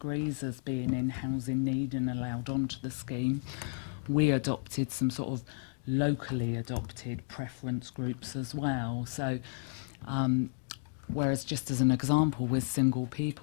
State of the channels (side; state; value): right; silent; 56 dB below the other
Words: as being in housing need and allowed onto the scheme. We adopted some sort of locally adopted preference groups as well. So whereas just as an example with single